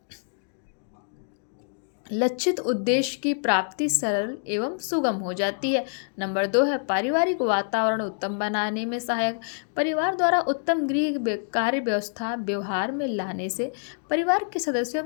लक्षित उद्देश्य की प्राप्ति सरल एवं सुगम हो जाती है। नंबर 2 है पारिवारिक वातावरण उत्तम बनाने में सहायक। परिवार द्वारा उत्तम गृह कार्य व्यवस्था व्यवहार में लाने से परिवार के सदस्यों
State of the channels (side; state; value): right; silent; 61 dB below the other